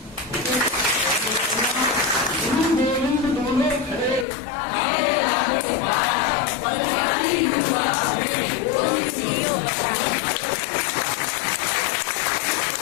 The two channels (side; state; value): right; drops out; at 4.2 s